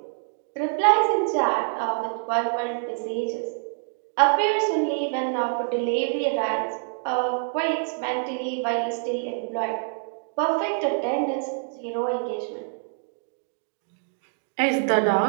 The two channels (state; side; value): silent; left; digital silence